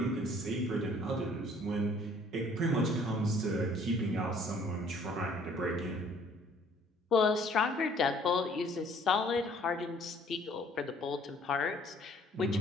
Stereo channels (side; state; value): both; normal; correlation 0.58